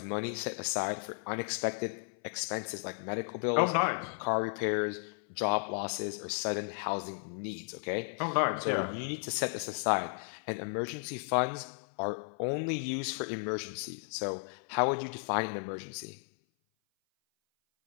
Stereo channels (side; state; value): right; silent; 55 dB below the other